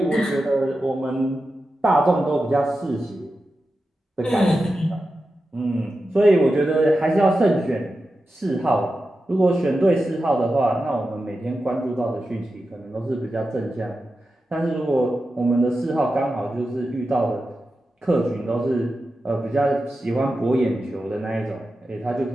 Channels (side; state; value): both; normal; correlation 0.91